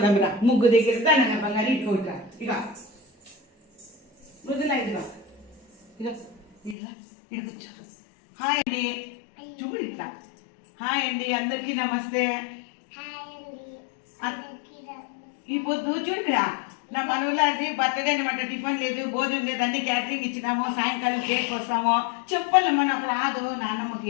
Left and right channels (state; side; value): drops out; right; at 6.8 s